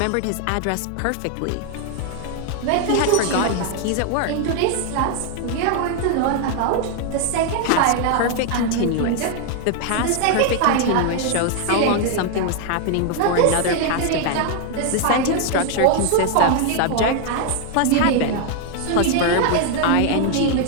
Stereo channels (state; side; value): different; both; correlation 0.00